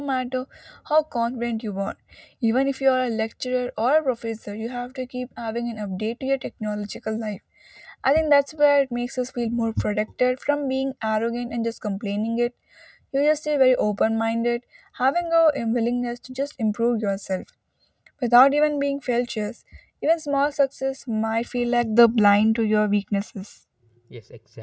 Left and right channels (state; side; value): identical; both; correlation 1.00